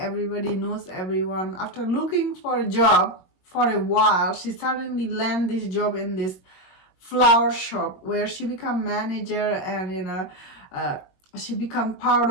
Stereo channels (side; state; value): right; late; 21 ms